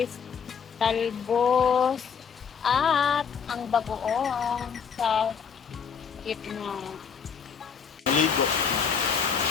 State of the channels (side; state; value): right; quieter; 6.7 dB